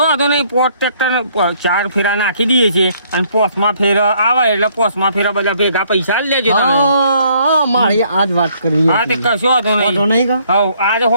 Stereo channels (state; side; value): inverted; both; correlation -0.65